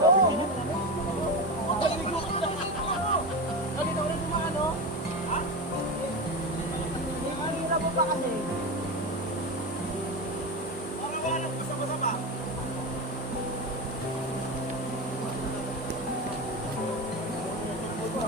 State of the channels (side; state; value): both; normal; correlation 0.20